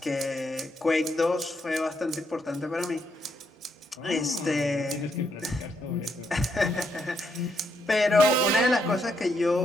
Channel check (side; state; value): both; normal; correlation 0.77